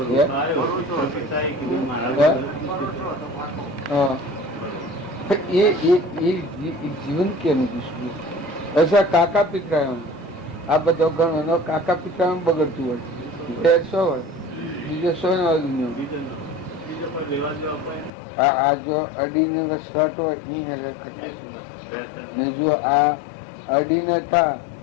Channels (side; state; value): right; drops out; at 18.1 s